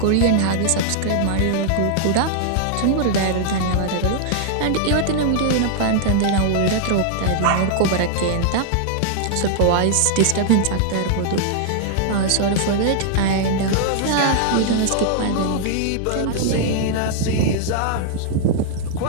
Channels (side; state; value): both; different; correlation -0.01